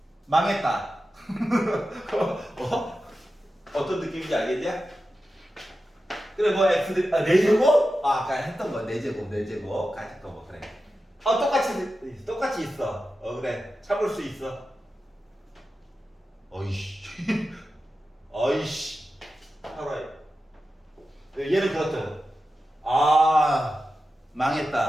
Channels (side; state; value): both; normal; correlation 0.92